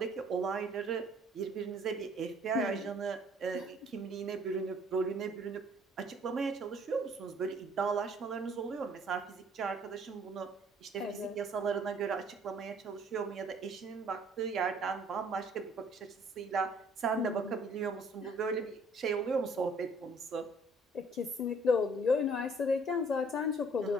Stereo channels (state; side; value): normal; both; correlation 0.58